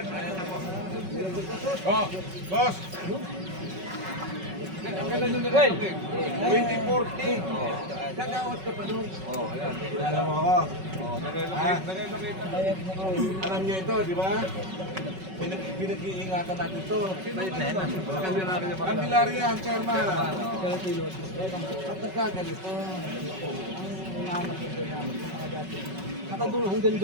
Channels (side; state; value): left; late; 5.3 ms